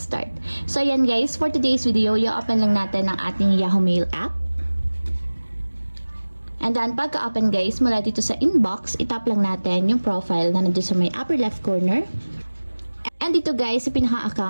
start. So ayan guys, for today's video, i-open lang natin ang ating Yahoo Mail app. And then, pagka-open guys, mula dito sa inbox, itap lang natin yung profile na nandito sa may upper left corner. And dito guys, sa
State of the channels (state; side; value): inverted; both; correlation -1.00